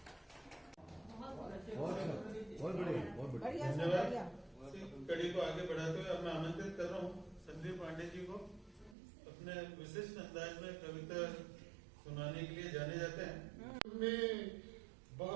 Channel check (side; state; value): left; drops out; at 9.0 s